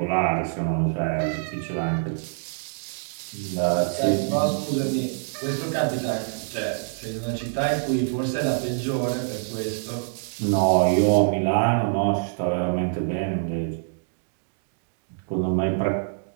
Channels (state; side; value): silent; left; digital silence